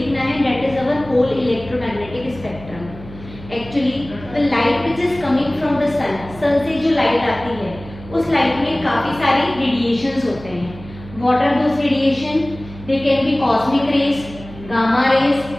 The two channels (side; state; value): right; noise; hum, 16 dB below the sound